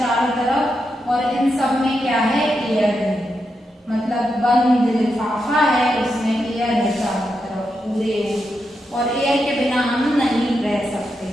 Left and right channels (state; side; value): normal; both; correlation 0.85